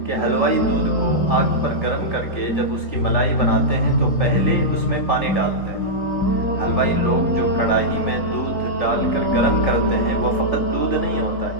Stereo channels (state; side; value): late; right; 3.8 ms